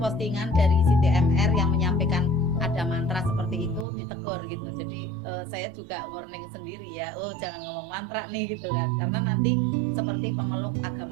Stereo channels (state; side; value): drops out; left; at 3.9 s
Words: dari Siti MR yang menyampaikan ada mantra seperti itu, ditegur gitu. Jadi saya juga warning sendiri ya, jangan ngomong mantra nih gitu kan, karena nanti seperti pemeluk